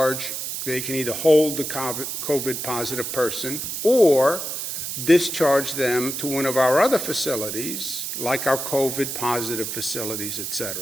they can either hold the COVID positive person or discharge them to one of our other facilities, like our COVID positive facilities, et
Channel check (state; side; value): noise; right; hiss, 5 dB below the sound